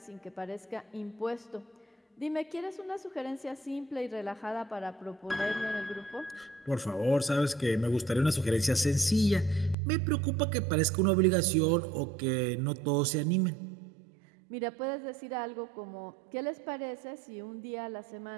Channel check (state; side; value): drops out; left; at 9.8 s